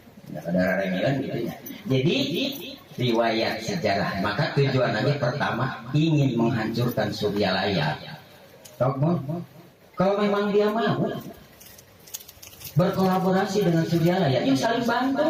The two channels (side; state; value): both; identical; correlation 1.00